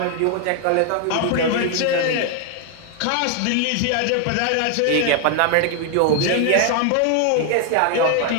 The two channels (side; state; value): both; different; correlation 0.00